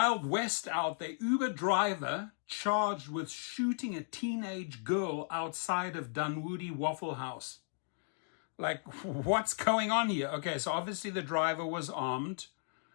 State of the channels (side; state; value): right; silent; digital silence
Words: West out there. Uber driver charged with shooting a teenage girl outside of Dunwoody Waffle House. Like, what's going on here? Okay, so obviously the driver was armed,